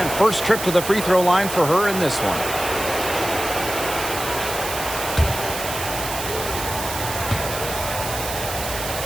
first trip to the free throw line for her in this one.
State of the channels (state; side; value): noise; right; hiss, 7 dB below the sound